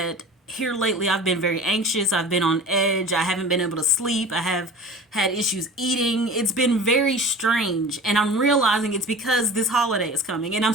here lately I've been very anxious. I've been on edge. I haven't been able to sleep. I have had issues eating. It's been very strange, and I'm realizing it's because this holiday is coming, and I'm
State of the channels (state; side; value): normal; both; correlation 0.38